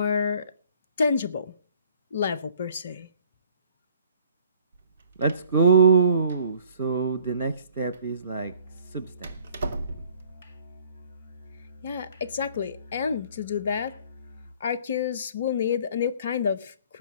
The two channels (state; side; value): inverted; both; correlation -0.56